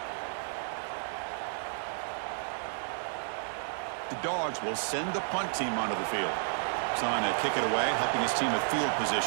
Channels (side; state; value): left; silent; 57 dB below the other